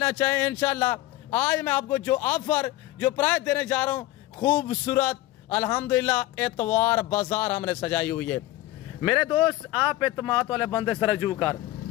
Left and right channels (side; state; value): right; quieter; 16.7 dB